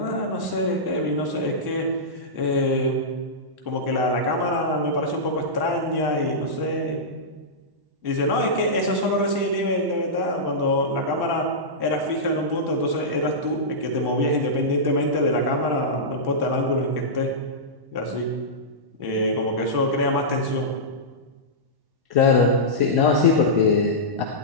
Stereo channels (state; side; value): late; left; 1.1 ms